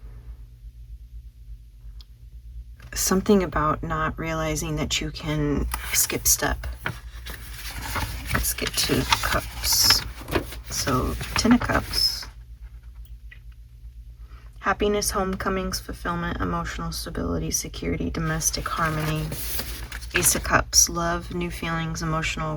Something about not realizing that you can skip step. Let's get to cups. So, Ten of Cups. Happiness, homecomings, fulfillment, emotional stability, security, domestic harmony. Ace of Cups. Love, new feelings, emotional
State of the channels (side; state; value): both; identical; correlation 1.00